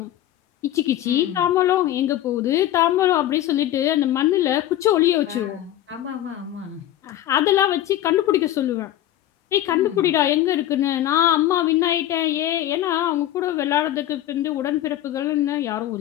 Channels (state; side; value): quieter; right; 12.9 dB